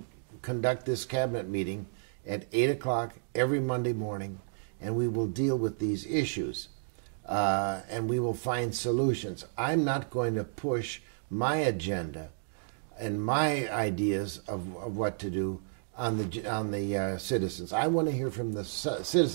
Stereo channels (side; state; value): left; silent; digital silence